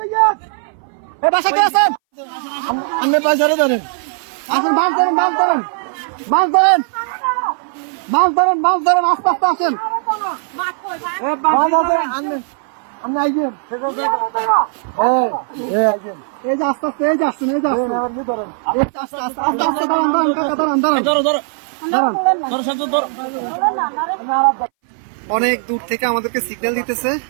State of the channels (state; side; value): silent; left; 62 dB below the other